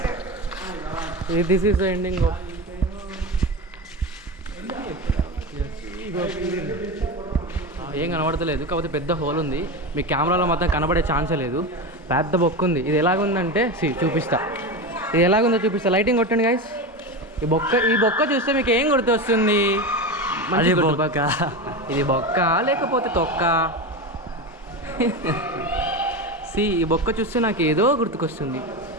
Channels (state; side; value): normal; both; correlation 0.21